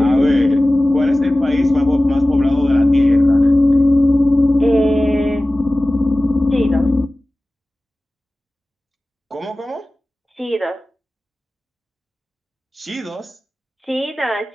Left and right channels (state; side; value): normal; both; correlation 0.97